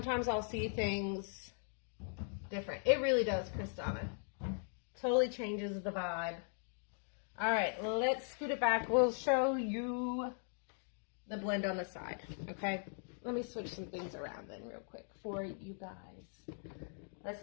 I'll see things different. It really does, Kristana. Totally changes the vibe. All right, let's scoot it back. We'll show you the blend on the side, okay? Let me switch some things around then real quick for you guys.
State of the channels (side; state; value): right; silent; 51 dB below the other